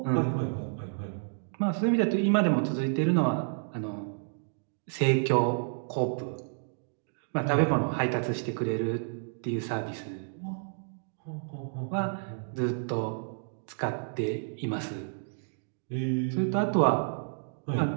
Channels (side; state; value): left; silent; digital silence